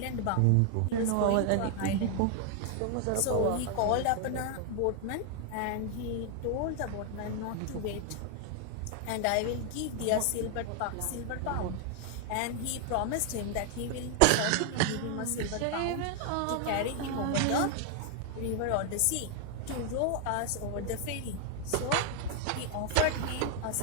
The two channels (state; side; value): different; both; correlation 0.00